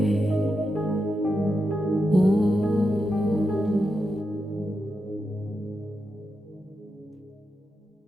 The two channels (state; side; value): normal; both; correlation 0.87